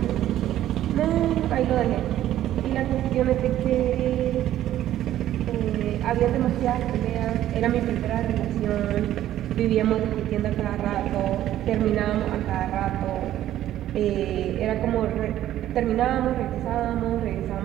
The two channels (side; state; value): left; quieter; 12.7 dB